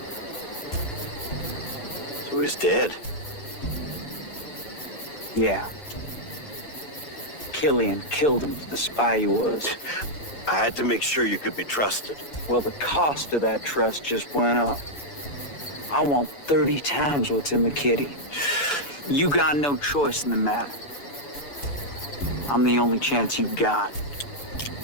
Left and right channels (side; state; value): right; late; 7.0 ms